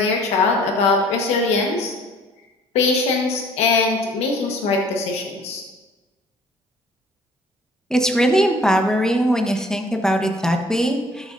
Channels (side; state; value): both; normal; correlation 0.54